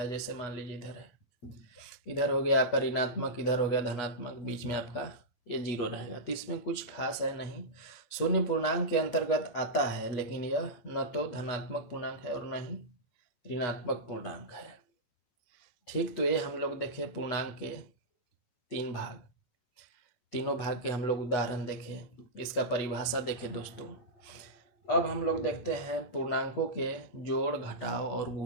जैसे मान लीजिए इधर है, इधर हो गया आपका ऋणात्मक, इधर हो गया धनात्मक, बीच में आपका ये जीरो रहेगा। तो इसमें कुछ खास है नहीं, शून्य पूर्णांक के अंतर्गत आता है, लेकिन यह न तो धनात्मक पूर्णांक है और न ही ऋणात्मक पूर्णांक है। ठीक, तो ये हम लोग देखे पूर्णांक के तीन भाग, तीनों भाग के हम लोग उदाहरण देखे, इसका परिभाषा देखे दोस्तों। अब हम लोग देखते हैं पूर्णांकों के जोड़, घटाव और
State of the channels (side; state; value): right; late; 8.7 ms